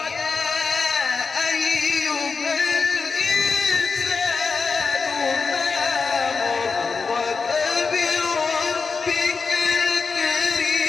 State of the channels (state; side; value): quieter; right; 4.8 dB